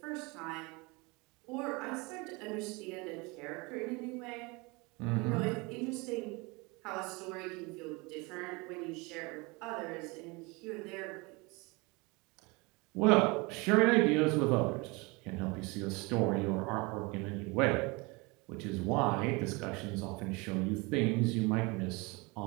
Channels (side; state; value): left; quieter; 26.5 dB